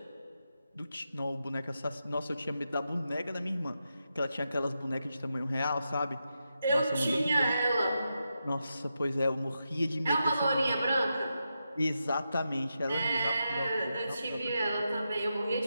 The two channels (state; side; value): inverted; both; correlation -0.87